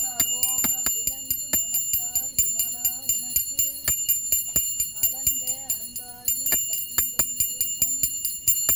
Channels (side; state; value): right; noise; rumble, 24 dB below the sound